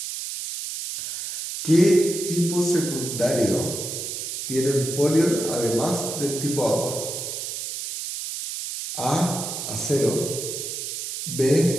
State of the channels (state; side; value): noise; right; hiss, 6 dB below the sound